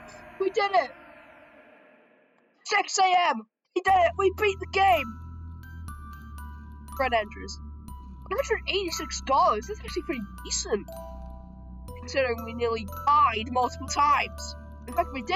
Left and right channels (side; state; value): both; identical; correlation 1.00